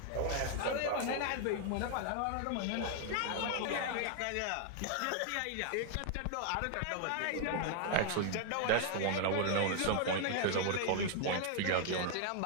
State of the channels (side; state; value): both; different; correlation 0.00